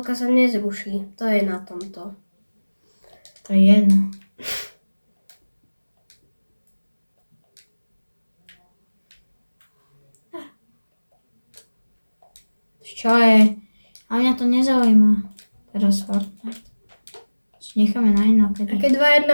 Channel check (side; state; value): both; inverted; correlation -1.00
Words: sa nezruší. To je na tomto. To je jedno. Čo je? A mňa to nezaujíma. Teraz Fortnite. Necháme na inokedy. A keď